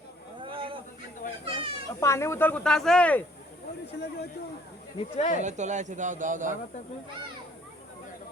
পানি বোতল কোথা আছে? নিচে তোলা আছে, দাও দাও দাও।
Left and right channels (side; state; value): both; normal; correlation 0.59